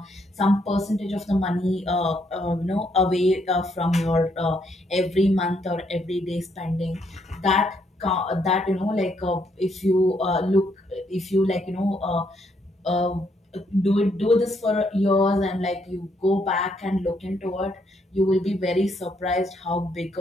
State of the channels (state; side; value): normal; both; correlation 0.73